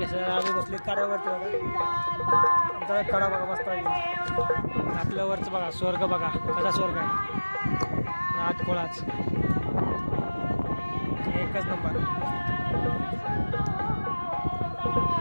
सर आम्ही बसली कड्यावरती बघा. आमचा कडा बघा मस्तपैकी. आपल्या वरचं बघा स्वर्ग बघा कसा स्वर्ग आहे. नात कोळाच एकच नंबर.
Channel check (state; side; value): inverted; both; correlation -1.00